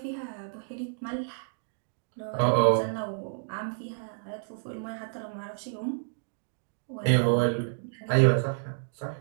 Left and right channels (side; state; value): left; silent; digital silence